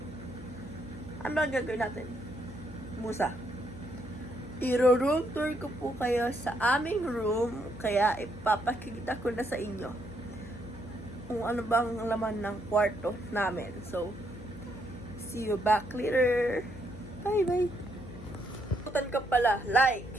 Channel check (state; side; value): noise; left; hum, 14 dB below the sound